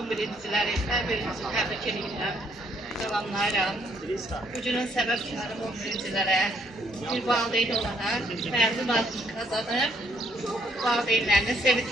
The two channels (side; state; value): both; normal; correlation 0.69